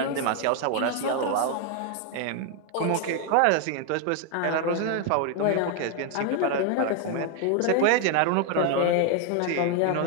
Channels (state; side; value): different; both; correlation 0.01